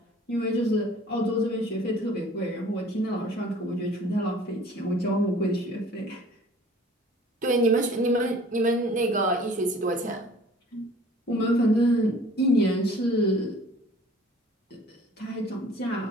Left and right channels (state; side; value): normal; both; correlation 0.50